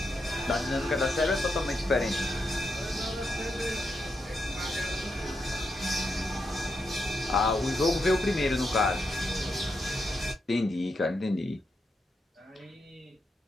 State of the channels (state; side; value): normal; both; correlation 0.83